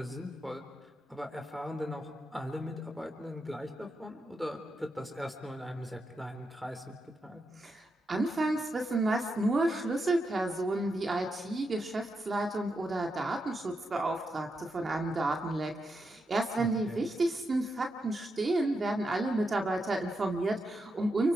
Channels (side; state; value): both; normal; correlation 0.85